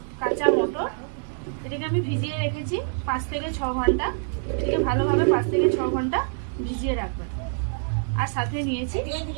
কাঁচা মটর। এটাকে আমি ভিজিয়ে রেখেছি 5 থেকে 6 ঘন্টা। এটাকে ভালোভাবে 5 থেকে 6 ঘন্টা ভিজিয়ে রাখবেন। আর সাথে নিয়েছি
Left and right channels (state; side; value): silent; left; 61 dB below the other